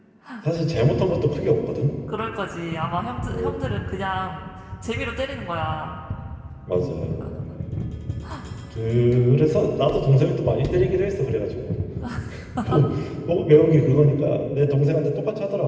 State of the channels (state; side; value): identical; both; correlation 1.00